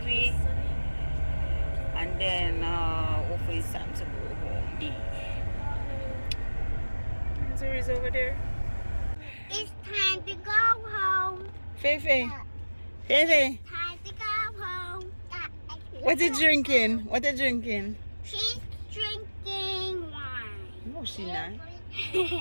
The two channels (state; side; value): inverted; both; correlation -1.00